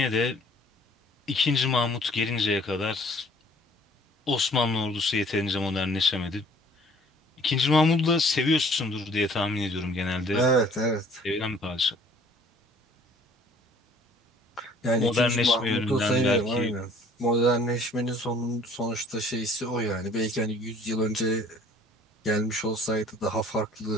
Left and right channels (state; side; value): normal; both; correlation 0.55